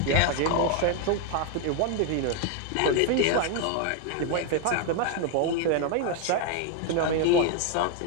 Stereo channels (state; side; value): different; both; correlation 0.01